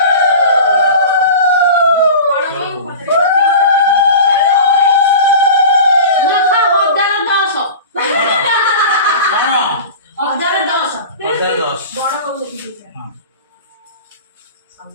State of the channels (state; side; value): inverted; both; correlation -0.35